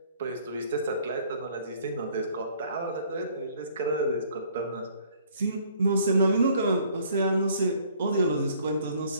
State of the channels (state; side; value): inverted; both; correlation -0.59